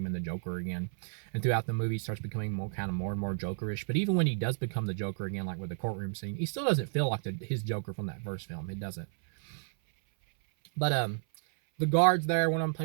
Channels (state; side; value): silent; left; 57 dB below the other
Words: into Joker again. And throughout the movie, he starts becoming more and more Jokerish. But even when he does become the Joker again, like with the courtroom scene, he still doesn't feel like his Joker from that first film. It doesn't. But the guards there, one of them